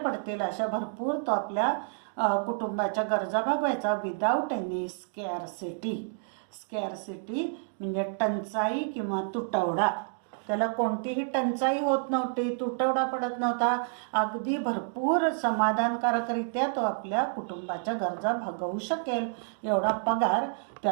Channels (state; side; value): silent; left; digital silence